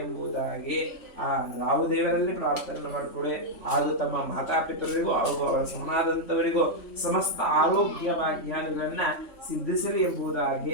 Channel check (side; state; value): right; late; 3.5 ms